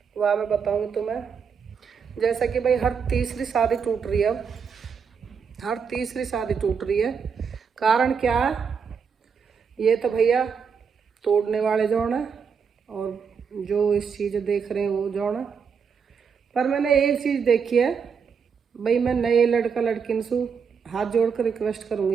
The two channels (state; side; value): quieter; left; 6.3 dB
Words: वह मैं बताऊंगी तुम्हें। जैसा कि भाई हर तीसरी शादी टूट रही है अब, हर तीसरी शादी टूट रही है। कारण क्या है? ये तो भैया तोड़ने वाले जौन है और जो इस चीज़ देख रहे हैं वो जौन है। पर मैंने एक चीज़ देखी है भाई, मैं नए लड़का लड़किन से हाथ जोड़ कर रिक्वेस्ट